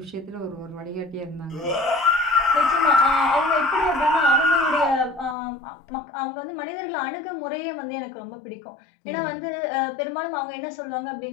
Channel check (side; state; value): right; drops out; at 5.4 s